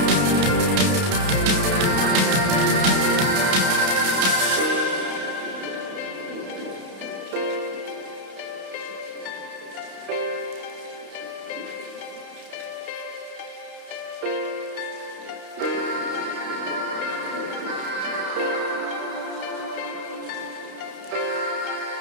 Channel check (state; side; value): late; left; 31 ms